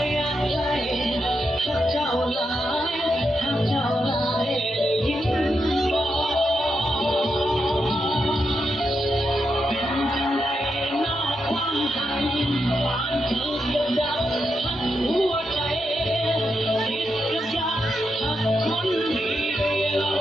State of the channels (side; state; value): both; normal; correlation 0.84